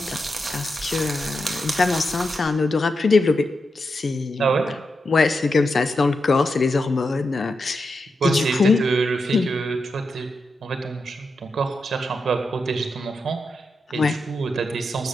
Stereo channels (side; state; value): both; normal; correlation 0.87